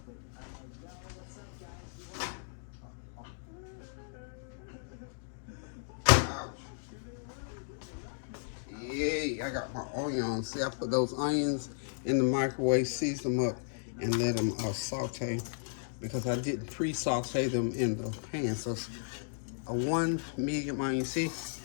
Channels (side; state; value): right; silent; digital silence